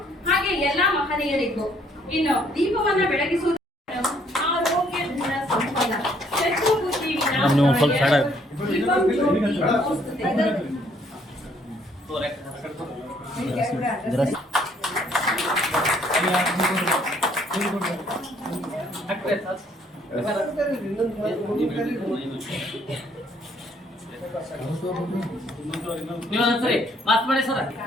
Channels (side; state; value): both; normal; correlation 0.65